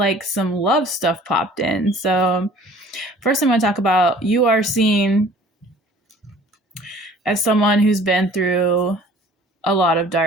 some love stuff popped in. So first I'm going to talk about you are seen as someone who's been through a lot of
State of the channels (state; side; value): normal; both; correlation 0.51